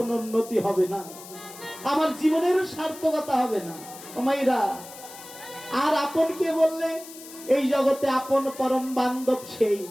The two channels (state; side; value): noise; left; hiss, 16 dB below the sound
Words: উন্নতি হবে না, আমার জীবনের সার্থকতা হবে না। ও মাইরা, আর আপন কে বললে? এই জগতে আপন পরম বান্ধব সেই